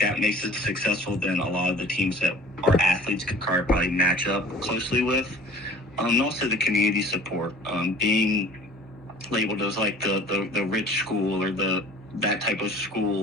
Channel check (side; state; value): both; normal; correlation 0.47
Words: makes it successful than a lot of the teams that our athletes could probably match up closely with. And also the community support, being labeled as like the rich school or that type of